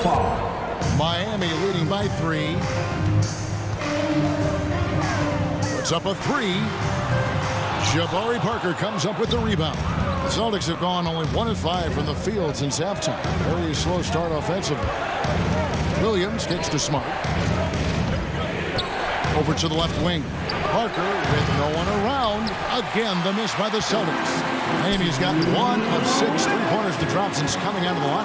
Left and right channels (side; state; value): both; identical; correlation 1.00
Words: Miami leading by 3. Puts up a 3. Jabari Parker comes up with the rebound. The Celtics have gone only 1 of 5 from the field since halftime. Very slow start offensively. Williams gets to Smart. Over to the left wing. Parker with no one around. Again, the miss by the Celtics. Miami's got 1 of 6 three-pointers to drop since coming out of the